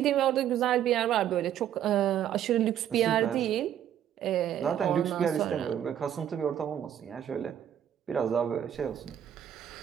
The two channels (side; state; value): left; quieter; 10.2 dB